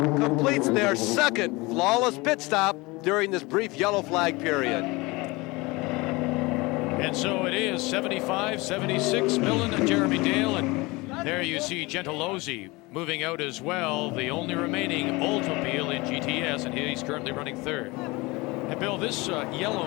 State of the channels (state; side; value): quieter; right; 23.6 dB